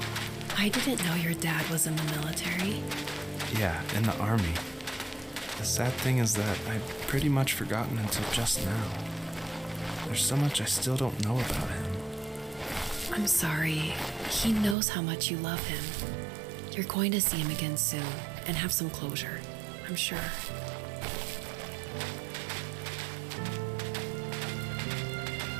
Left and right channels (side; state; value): left; drops out; at 14.8 s